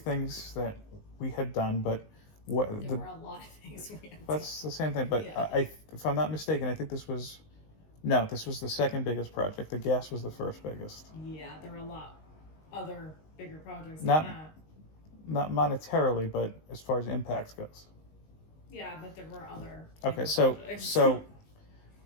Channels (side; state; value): right; late; 19 ms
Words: that we had done, but there were a lot of things we had. that's the same thing. But Yeah. if I'm not mistaken, I think this was the second biggest project. The gas was the first biggest. Yeah, there were a lot other bigger projects Not- than that. Not monetarily, but as far as impact goes. Yeah, but there were other Okay, bigger so projects.